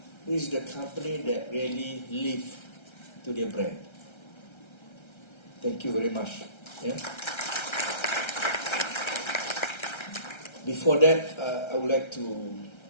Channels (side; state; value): right; late; 1.3 ms